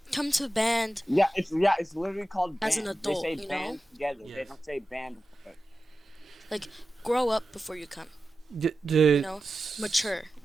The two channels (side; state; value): both; normal; correlation 0.93